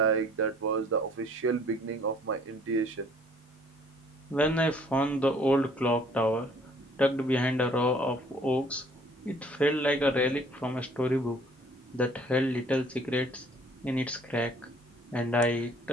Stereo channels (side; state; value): both; normal; correlation 0.57